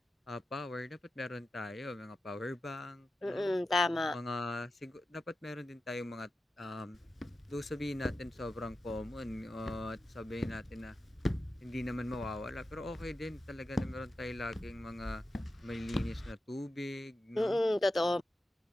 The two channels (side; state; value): both; normal; correlation 0.92